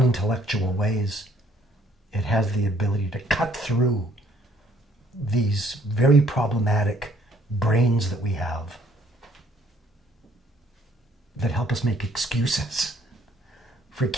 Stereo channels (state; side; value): normal; both; correlation 0.62